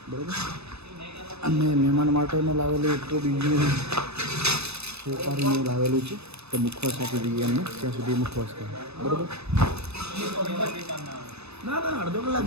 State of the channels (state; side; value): late; left; 0.79 ms